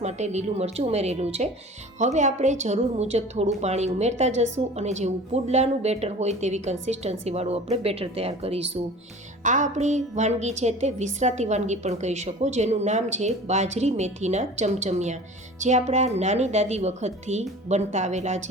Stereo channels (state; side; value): normal; both; correlation 0.41